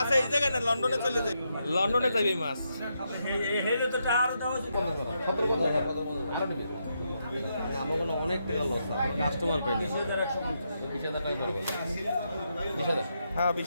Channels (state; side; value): inverted; both; correlation -0.81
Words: এই জায়গায় না, লন্ডনে চলে যাবে, লন্ডনে যাবে এই মাছ। আমাকে অনেক টাকা লস কাস্টমার পাই না। হ্যাঁ